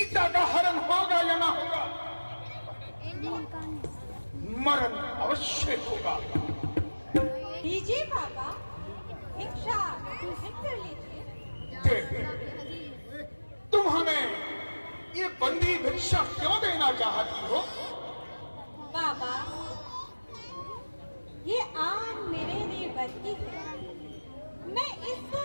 का हरण होगा या ना होगा, मरण अवश्य होगा। लीजिए बाबा, भिक्षा ग्रहण कर लीजिए। देवी, तुम हमें ये बंदी भिक्षा क्यों देना चाहती हो? बाबा, ये आन मेरे लिए बरती है, मैं इसको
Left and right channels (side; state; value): both; inverted; correlation -1.00